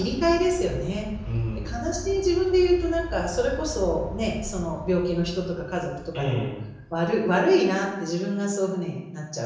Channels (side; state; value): both; identical; correlation 1.00